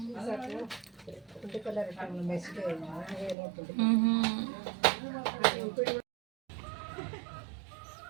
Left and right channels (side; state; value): left; drops out; at 3.4 s